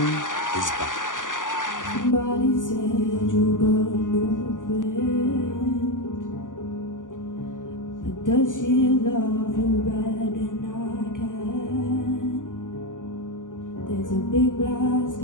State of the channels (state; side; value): late; right; 0.88 ms